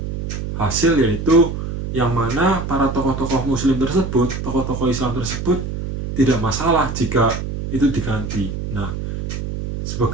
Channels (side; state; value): right; noise; hum, 5 dB below the sound